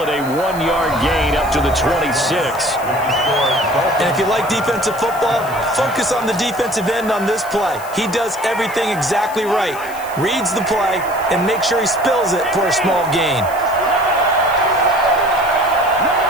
it a 1-yard gain up to the 26. And if you like defensive football, focus on the defensive end on this play. He does everything exactly right. Reads the play and makes sure he spills it for a small gain.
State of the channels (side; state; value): left; noise; hiss, 18 dB below the sound